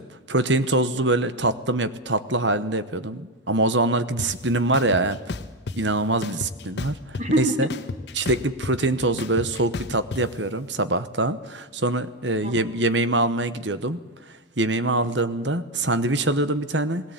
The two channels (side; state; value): both; normal; correlation 0.10